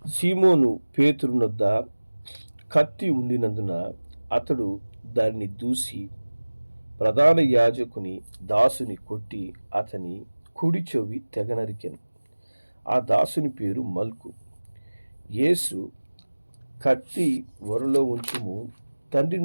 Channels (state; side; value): inverted; both; correlation -1.00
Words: సీమోను పేతురునొద్ద కత్తి ఉండినందున అతడు దానిని దూసి ప్రధాన యాజకుని దాసుని కొట్టి అతని కుడి చెవి తెగనరికెను. ఆ దాసుని పేరు మల్కు. యేసు, కత్తి ఒరలో ఉంచుము, తండ్రి